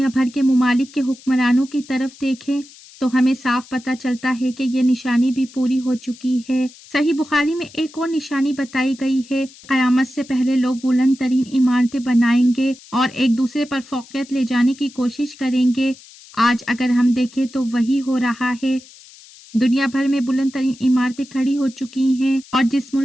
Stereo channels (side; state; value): left; noise; hiss, 22 dB below the sound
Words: بھر کے ممالک کے حکمرانوں کی طرف دیکھیں تو ہمیں صاف پتہ چلتا ہے کہ یہ نشانی بھی پوری ہو چکی ہے۔ صحیح بخاری میں ایک اور نشانی بتائی گئی ہے، قیامت سے پہلے لوگ بلند ترین عمارتیں بنائیں گے اور ایک دوسرے پر فوقیت لے جانے کی کوشش کریں گے۔ آج اگر ہم دیکھیں تو وہی ہو رہا ہے، دنیا بھر میں بلند ترین عمارتیں کھڑی ہو چکی ہیں، اور جس